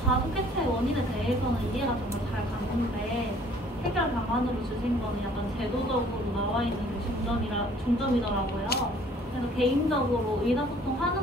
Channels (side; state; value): both; normal; correlation 0.56